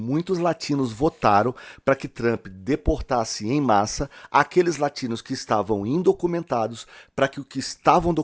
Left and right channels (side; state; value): both; identical; correlation 1.00